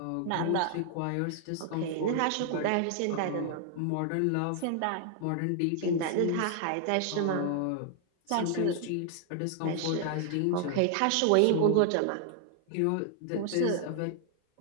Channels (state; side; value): different; both; correlation 0.00